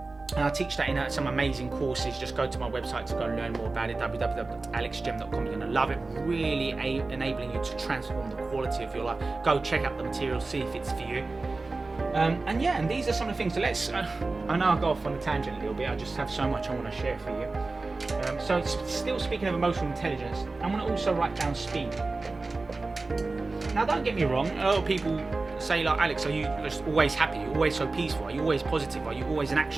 I teach that in some amazing courses. Just go to my website to go and learn more about it, www.alexgem.com. You're going to love it. Really enabling you to transform the quality of your life. Go check out the material, see if it's for you. And these are some of the things. So I know I'll go off on a tangent a little bit. I just have so much I want to share for you. So still speaking of emotional intelligence, I want to also write down speed. Now, don't get me wrong. A lot of people say, like, Alex, are you just always happy? Are you always so peaceful? Are you always positive? Are you always an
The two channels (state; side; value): quieter; left; 3.5 dB